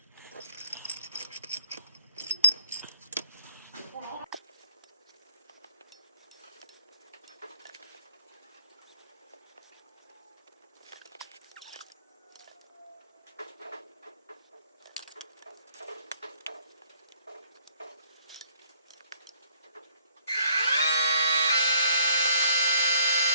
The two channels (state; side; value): inverted; both; correlation -0.61